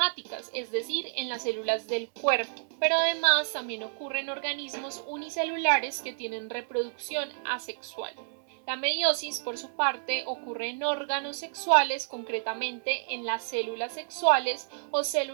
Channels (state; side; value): silent; left; 58 dB below the other